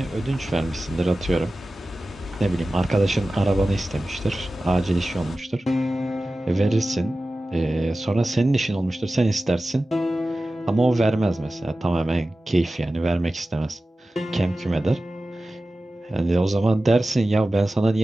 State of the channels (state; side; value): normal; both; correlation 0.95